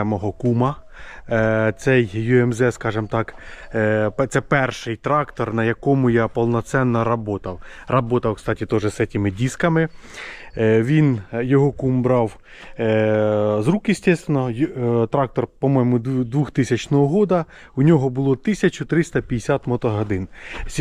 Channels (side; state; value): both; identical; correlation 1.00